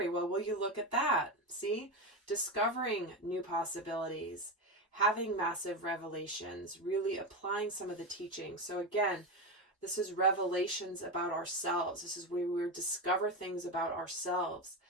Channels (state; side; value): normal; both; correlation 0.16